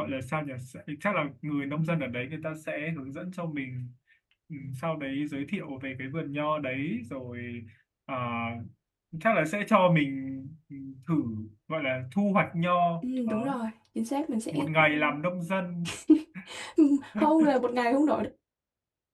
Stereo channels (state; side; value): identical; both; correlation 1.00